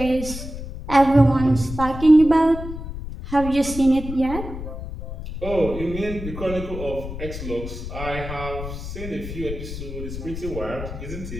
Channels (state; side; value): noise; left; rumble, 8 dB below the sound